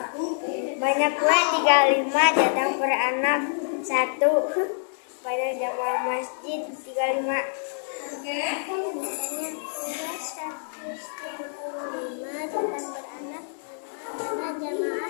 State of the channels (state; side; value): silent; right; digital silence